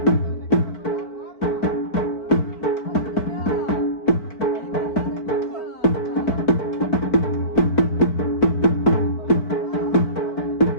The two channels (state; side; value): late; right; 4.5 ms